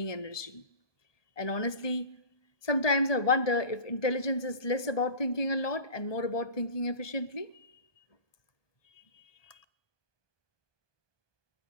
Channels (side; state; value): right; late; 1.2 ms